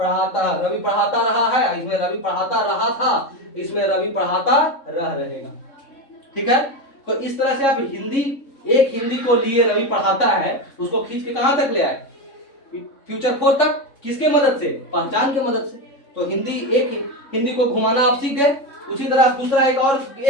रवि पढ़ाता रहा है, इसमें रवि पढ़ाता रहा था, इसमें रवि पढ़ाता रह रहेगा। ठीक है, तो इस तरह से आप हिंदी, एक हिंदी को लिए रवि पढ़ाता है, उसको खींच के कहां तक ले आए, फ्यूचर 4 तक। किसके मदद से, पहचान के मदद से। तो हिंदी, एक हिंदी को घुमाना आप सीख गए। उसी तरह दूसरा एक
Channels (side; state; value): right; late; 3.6 ms